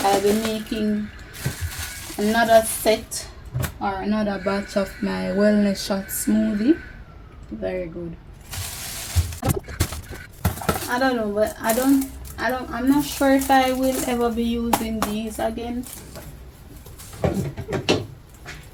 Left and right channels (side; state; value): both; identical; correlation 1.00